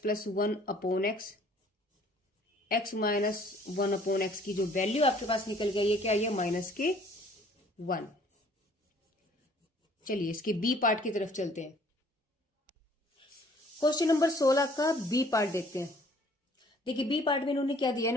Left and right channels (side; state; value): both; normal; correlation 0.57